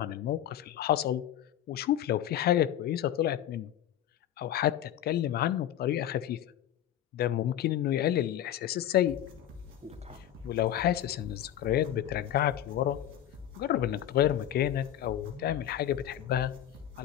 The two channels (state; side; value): quieter; right; 11.4 dB